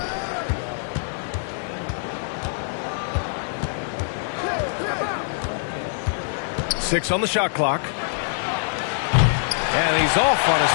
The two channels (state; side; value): silent; right; digital silence